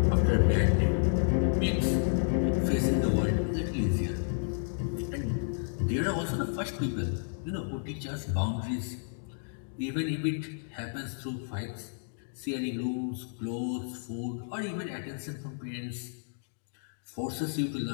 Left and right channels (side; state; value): right; silent; digital silence